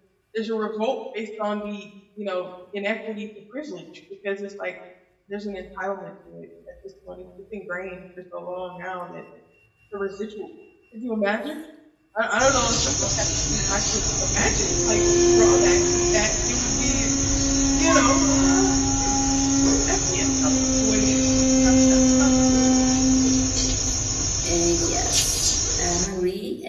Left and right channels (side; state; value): both; identical; correlation 1.00